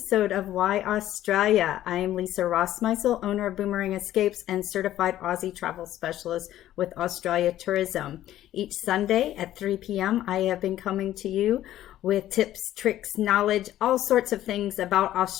of Why Australia. I am Lisa Rossmeissl, owner of Boomerang Escapes and certified Aussie travel specialist with Australia Tourism. Each Sunday at 3 p.m., I have been coming to you with tips, tricks, knowledge, all sorts of things about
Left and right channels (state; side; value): quieter; right; 13.1 dB